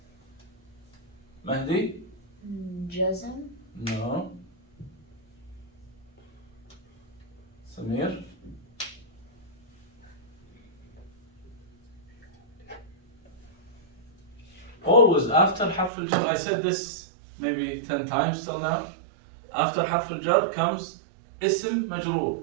Mahdi? جزم. No. Samir? Always after حرف الجر, I said this maybe 10 times till now. After حرف الجر comes اسم مجرور.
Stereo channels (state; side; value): drops out; left; at 15.9 s